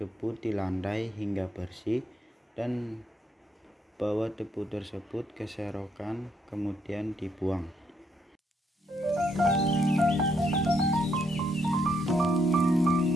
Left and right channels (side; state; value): both; normal; correlation 0.74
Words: di lantai hingga bersih dan bawa debu tersebut ke serokan kemudian dibuang.